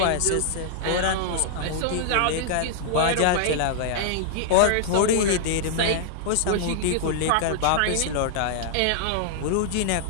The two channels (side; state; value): both; different; correlation -0.01